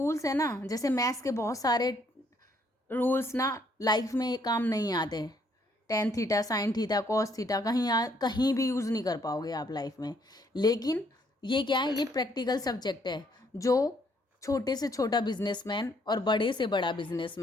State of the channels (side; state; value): both; normal; correlation 0.68